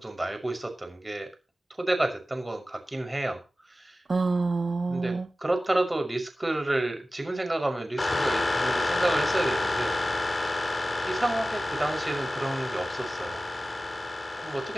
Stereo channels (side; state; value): both; normal; correlation 0.95